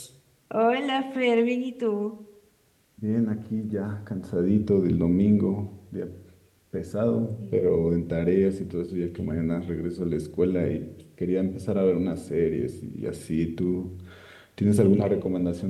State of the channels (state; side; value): identical; both; correlation 1.00